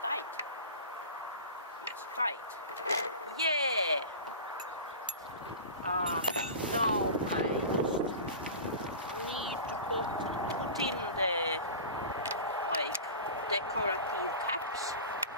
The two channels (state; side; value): inverted; both; correlation -0.33